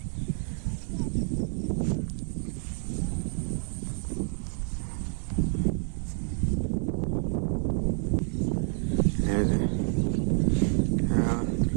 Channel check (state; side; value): silent; left; 59 dB below the other